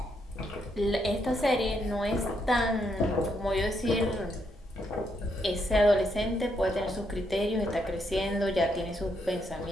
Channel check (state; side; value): normal; both; correlation 0.77